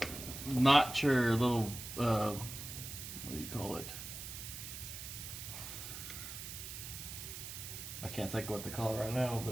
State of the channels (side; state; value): right; noise; hiss, 9 dB below the sound